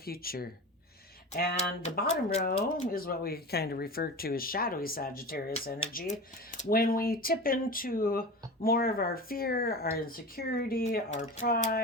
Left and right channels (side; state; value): both; normal; correlation 0.30